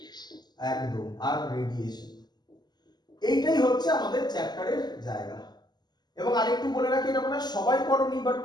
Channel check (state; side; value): late; right; 0.20 ms